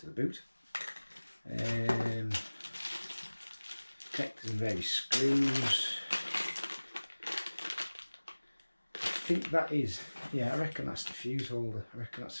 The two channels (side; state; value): both; inverted; correlation -1.00